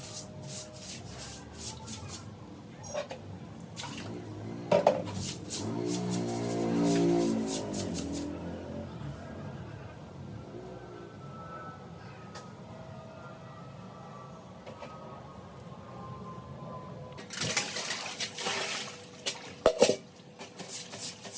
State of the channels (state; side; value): identical; both; correlation 1.00